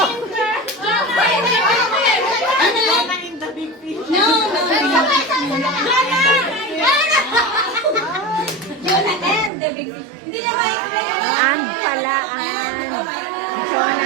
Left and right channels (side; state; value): left; drops out; at 9.5 s